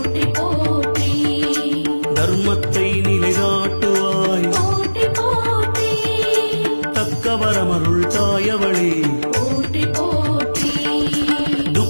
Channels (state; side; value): inverted; both; correlation -1.00